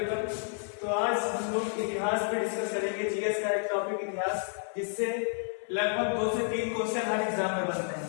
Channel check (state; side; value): silent; right; 57 dB below the other